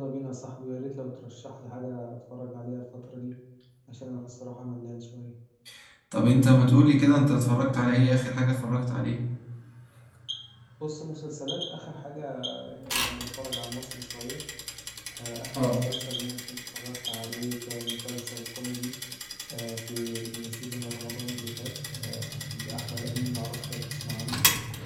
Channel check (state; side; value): identical; both; correlation 1.00